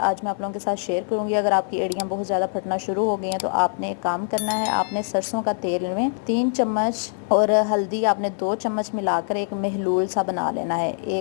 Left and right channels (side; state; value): right; silent; 63 dB below the other